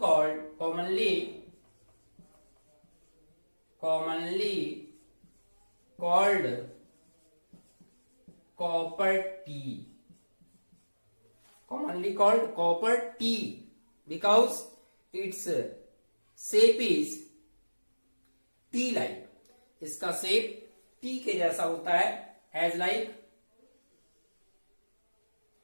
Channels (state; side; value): inverted; both; correlation -1.00